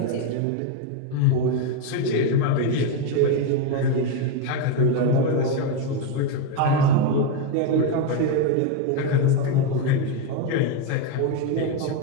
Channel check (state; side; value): different; both; correlation 0.02